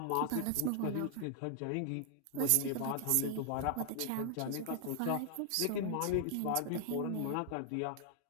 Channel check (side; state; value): both; different; correlation 0.00